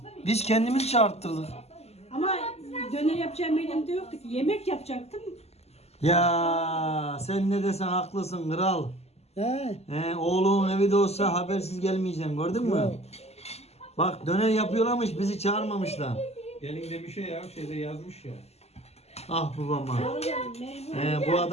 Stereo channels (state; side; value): late; right; 0.30 ms